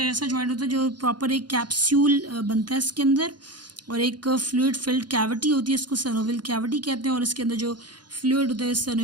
ऐसा जॉइंट होता है जो प्रॉपर एक कैप्सूल बनता है इसके अंदर, और एक फ्लूइड फिल्ड कैविटी होती है, इसको सैनोवियल कैविटी कहते हैं। और इसके अंदर जो फ्लूइड होता है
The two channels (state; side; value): late; left; 0.70 ms